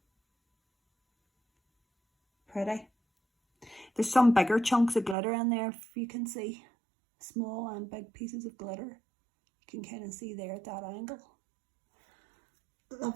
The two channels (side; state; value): left; drops out; at 5.2 s